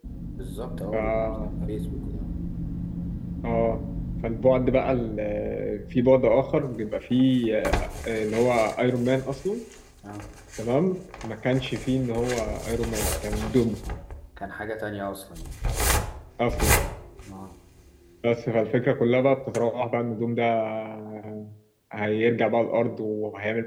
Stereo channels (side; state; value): both; identical; correlation 1.00